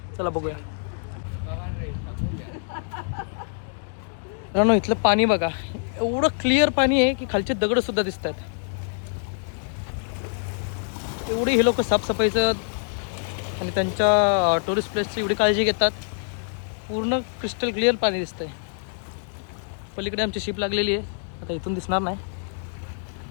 चला बघूया. मित्रांनो, इथलं पाणी बघा, एवढं क्लिअर पाणी आहे की खालचे दगड सुद्धा दिसत आहेत. एवढी हे लोक साफसफाईचं आणि त्यांच्या टुरिस्ट प्लेसची एवढी काळजी घेतात. पूर्ण क्रिस्टल क्लिअर पाणी दिसतंय. पलीकडे आमची शिप लागलेली आहे, आता इथून दिसणार नाही.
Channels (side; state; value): right; silent; digital silence